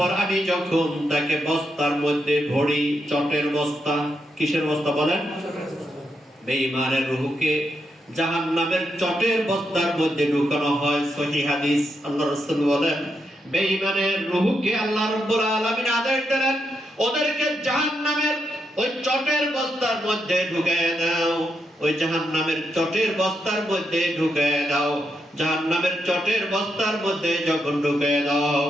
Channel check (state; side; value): normal; both; correlation 0.82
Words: আমি যখন তাকে বস্তার মধ্যে ভরি, চটের বস্তা, কিসের বস্তা বলেন? বেঈমানের রূহকে জাহান্নামের চটের বস্তার মধ্যে ঢুকানো হয়। সহিহ হাদিস। আল্লাহ রাসূল বলেন, বেঈমানের রূহকে আল্লাহ রাব্বুল আলামিন আদেশ দিলেন, ওদেরকে জাহান্নামের ওই চটের বস্তার মধ্যে ঢুকায় দাও, ওই জাহান্নামের চটের বস্তার মধ্যে ঢুকায় দাও। জাহান্নামের চটের বস্তার মধ্যে যখন ঢুকায় দেওয়া